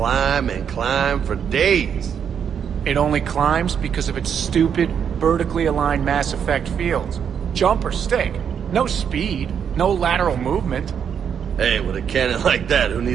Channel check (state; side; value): quieter; left; 7.8 dB